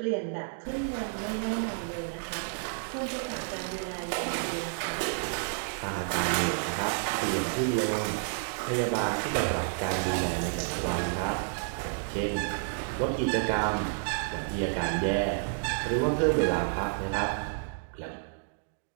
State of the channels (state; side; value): silent; left; digital silence